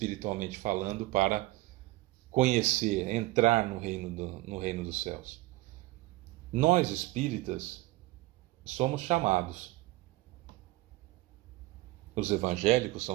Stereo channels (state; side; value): quieter; left; 19.7 dB